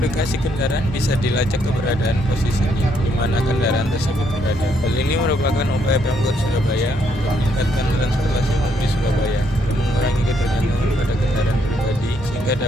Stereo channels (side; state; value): both; normal; correlation 0.72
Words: kendaraan bisa dilacak keberadaan posisinya di mana kendaraan tersebut berada. Hal ini merupakan upaya Pemkot Surabaya untuk meningkatkan transportasi umum di Surabaya dan mengurangi ketergantungan pada kendaraan pribadi sehingga